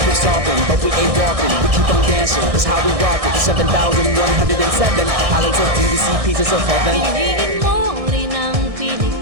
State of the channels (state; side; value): late; left; 1.6 ms